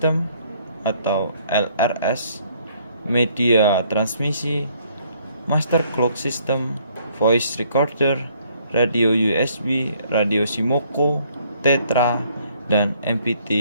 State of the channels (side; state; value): both; inverted; correlation -0.64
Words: atau LRS, Media Transmisi, Master Clock System, Voice Recorder, Radio USB, Radio Simoko, Tetra, dan